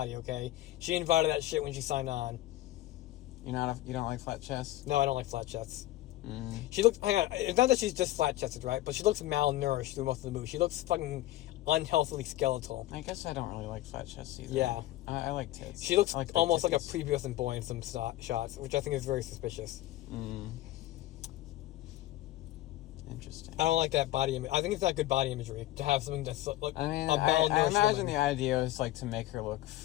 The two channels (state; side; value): quieter; right; 15.9 dB